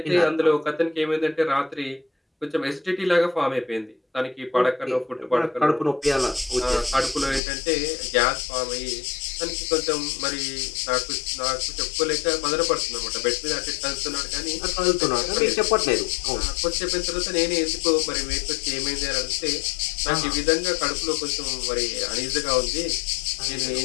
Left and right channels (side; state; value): right; drops out; at 7.4 s